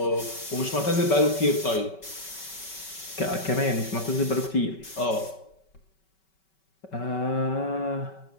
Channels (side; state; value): right; late; 5.3 ms